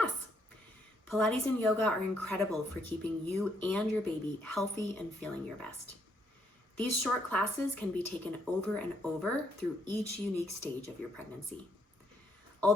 Pilates and yoga are incredible for keeping you and your baby healthy and feeling your best. These short classes can be taken over and over through each unique stage of your pregnancy.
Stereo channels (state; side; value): normal; both; correlation 0.72